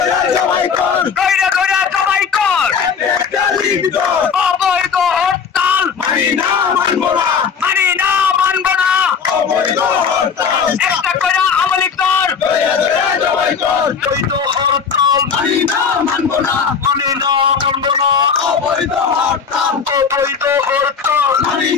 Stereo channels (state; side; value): quieter; right; 6.3 dB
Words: জবাই কর দইরা দইরা জবাই কর একটা লিখ দর অবৈধ হরতাল মানি না মানব না মানি না মানব না অবৈধ হরতাল একটা করে আমলিক কর দইরা দইরা জবাই কর অবৈধ হরতাল মানি না মানব না মানি না মানব না অবৈধ হরতাল অবৈধ হরতাল মানি